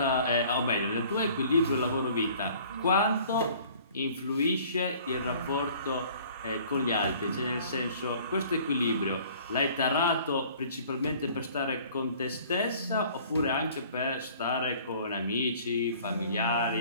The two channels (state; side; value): inverted; both; correlation -0.52